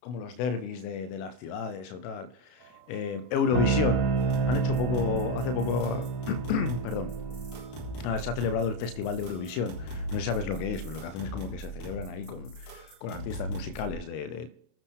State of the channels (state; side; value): late; right; 32 ms